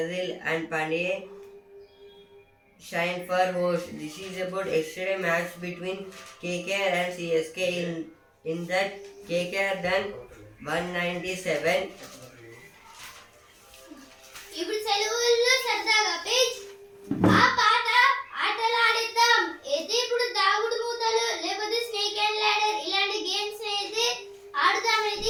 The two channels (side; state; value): both; identical; correlation 1.00